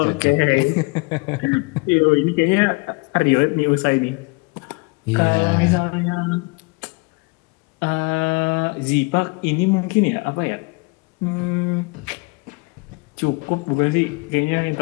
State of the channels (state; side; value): quieter; right; 28.9 dB